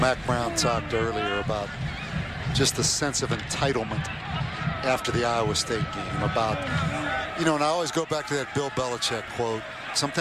Brown talked earlier about just the sense of entitlement after the Iowa State game. About, you know, and I always go back to that Bill Belichick quote.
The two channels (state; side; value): identical; both; correlation 1.00